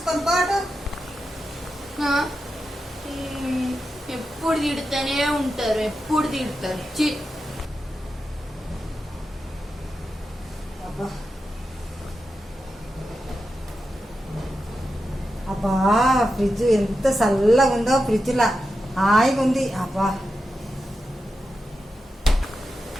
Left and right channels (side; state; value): both; normal; correlation 0.89